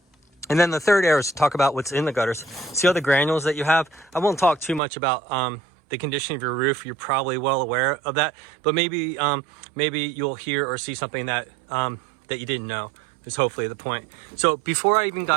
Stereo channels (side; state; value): left; drops out; at 4.8 s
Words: And then the third arrow is to talk about what's in the gutters. See all the granules that you have? I won't talk too much about the condition of your roof. You're probably well aware of that, but maybe you'll hear or see something that that you didn't know is hopefully the point. So before I even